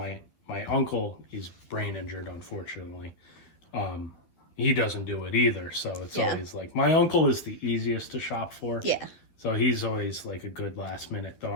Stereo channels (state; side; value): late; right; 11 ms